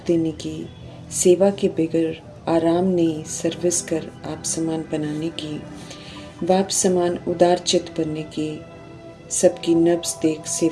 की, सेवा के बगैर आराम नहीं सर्विस कर आप समान बनाने की, बाप समान उदार चित बनने की, सबकी नब्ज देख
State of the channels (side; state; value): both; identical; correlation 1.00